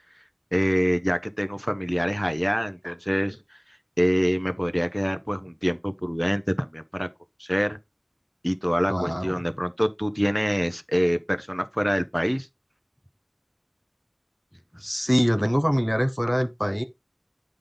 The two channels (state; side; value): identical; both; correlation 1.00